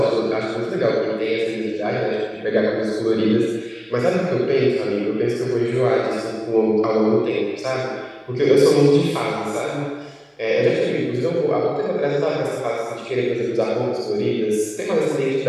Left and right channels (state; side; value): identical; both; correlation 1.00